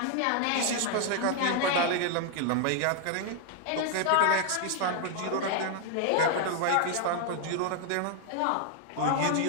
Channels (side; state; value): both; different; correlation 0.00